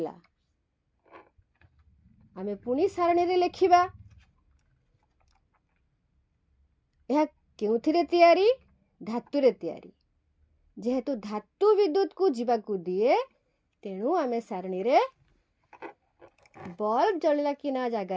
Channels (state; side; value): identical; both; correlation 1.00